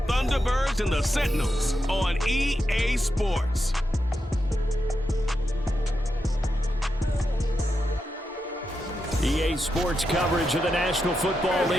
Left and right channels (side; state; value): both; normal; correlation 0.86